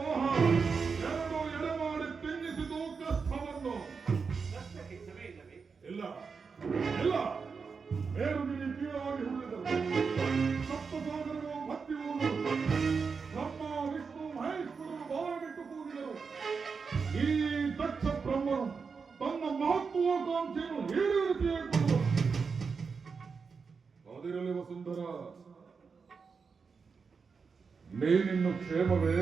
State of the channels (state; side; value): quieter; left; 5.3 dB